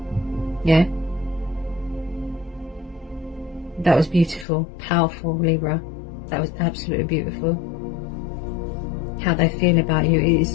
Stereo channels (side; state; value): right; drops out; at 4.5 s